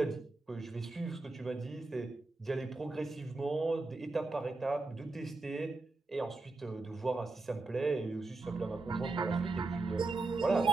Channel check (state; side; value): quieter; left; 3.3 dB